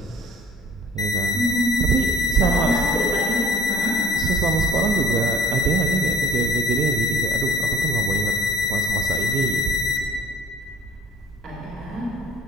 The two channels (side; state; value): both; normal; correlation 0.54